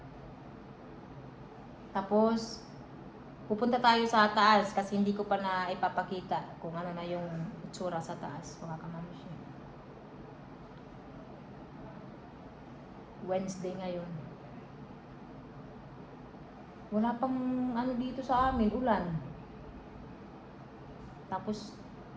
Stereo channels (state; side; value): identical; both; correlation 1.00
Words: Tapos, pupunta tayo sa taas kasi hindi ko pa na ipapakita kung ano na yung itsura sa taas, mga kamamshi. Wednesday ngayon. Wala pang ano dito sa amin, ulan. Tapos,